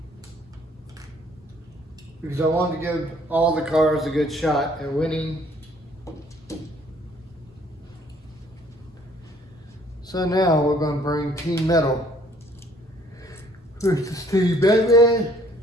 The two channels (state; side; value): normal; both; correlation 0.60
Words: Because I wanted to give all the cars a good shot at winning. So now we're going to bring Team Metal versus Team Batman.